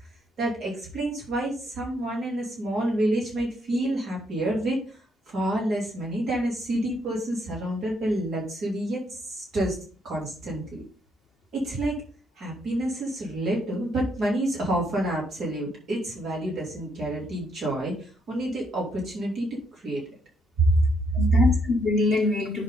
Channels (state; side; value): normal; both; correlation 0.73